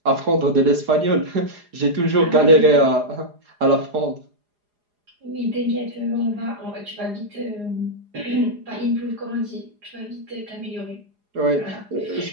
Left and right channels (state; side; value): late; left; 4.8 ms